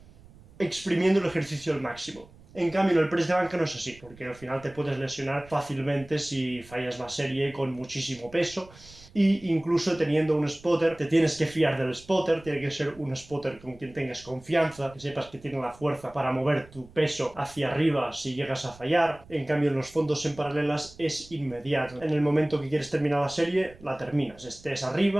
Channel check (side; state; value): right; noise; rumble, 23 dB below the sound